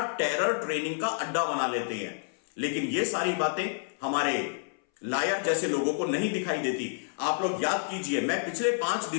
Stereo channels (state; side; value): silent; right; 59 dB below the other